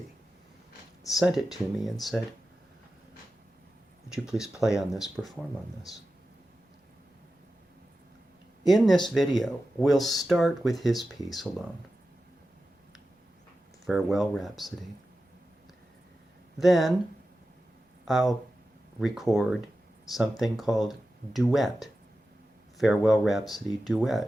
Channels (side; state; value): both; normal; correlation 0.93